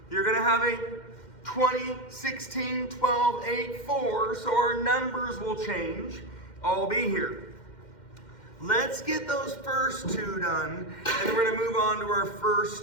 You're gonna have a 20, 16, 12, 8, 4, so our numbers will change. I'll be here. Let's get those first 2 done, and we're gonna move on to our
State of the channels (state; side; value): late; right; 2.1 ms